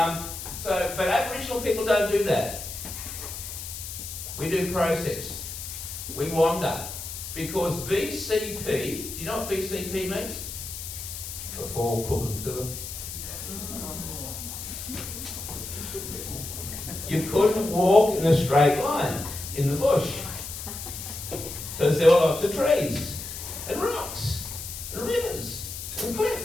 But Aboriginal people don't do that. We do process. We wander. Because BCP, do you know what BCP means? Before Cook and Phillip. You couldn't walk in a straight line in the bush. Because there were lots of trees and rocks and rivers and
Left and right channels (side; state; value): left; noise; hiss, 8 dB below the sound